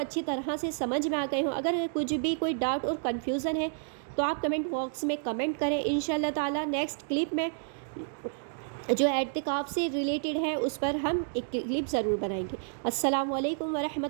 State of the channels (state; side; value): silent; left; digital silence